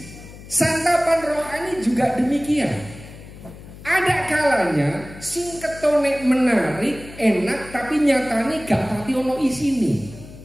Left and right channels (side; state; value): left; noise; hum, 17 dB below the sound